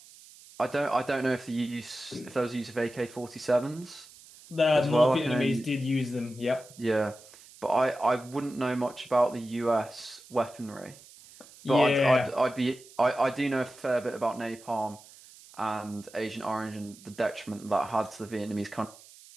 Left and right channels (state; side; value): noise; right; hiss, 21 dB below the sound